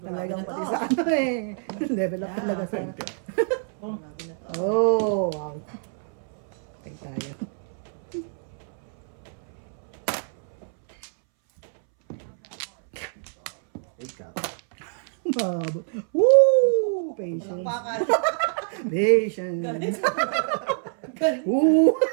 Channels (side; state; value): left; silent; 61 dB below the other